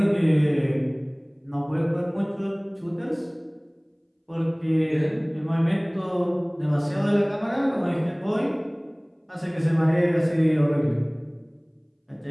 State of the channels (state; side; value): identical; both; correlation 1.00